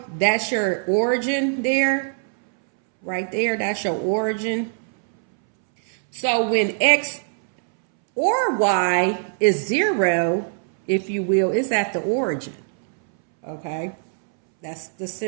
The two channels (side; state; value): left; silent; 64 dB below the other